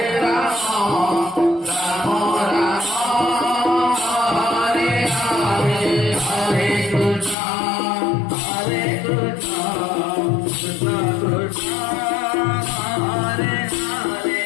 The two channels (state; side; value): drops out; right; at 7.4 s